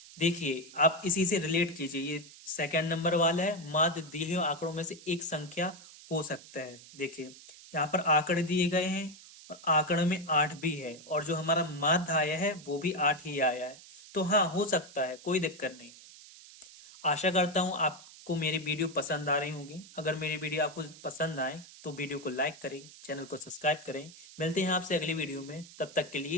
देखिए आप इसी से रिलेट कीजिए, ये सेकंड नंबर वाला है, माध्य दिए हुए आंकड़ों में से एक संख्या हो सकता है। देखिए यहाँ पर आंकड़े दिए गए हैं और आंकड़े में 8 भी है, और जो हमारा माध्य आया है वो भी 8 ही आया है। तो हाँ हो सकता है, कोई दिक्कत नहीं है। आशा करता हूँ आपको मेरी वीडियो पसंद आ रही होंगी। अगर मेरी वीडियो आपको पसंद आए तो वीडियो को लाइक करें, चैनल को सब्सक्राइब करें। मिलते हैं आपसे अगली वीडियो में, तब तक के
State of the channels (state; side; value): noise; right; hiss, 19 dB below the sound